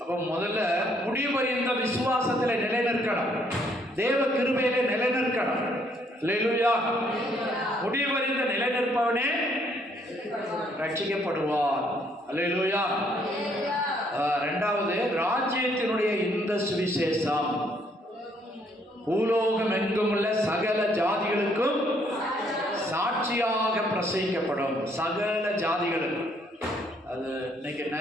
அப்போ முதல்ல முடிவு இந்த விசுவாசத்தில் நிலைநிற்கணும். தேவ கிருபையிலே நிலைநிற்கணும். அல்லேலூயா. முடிவு இந்த நிலைநிற்பவனே ரட்சிக்கப்படுவார். அல்லேலூயா. 2வது, ராஜ்யத்தினுடைய இந்த சுவிசேஷம் பூலோகம் எங்கும் உள்ள சகல ஜாதிகளுக்கும் சாட்சியாக பிரசங்கிக்கப்படும். சகல ஜாதிகளுக்கும். அது இன்னைக்கு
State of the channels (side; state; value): both; normal; correlation 0.68